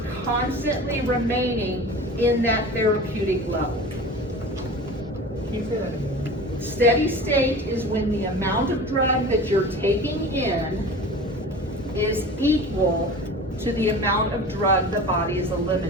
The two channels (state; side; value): normal; both; correlation 0.36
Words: constantly remaining in that therapeutic level. Can you say that again? Steady state is when the amount of drug that you're taking in is equal to the amount of drug the body is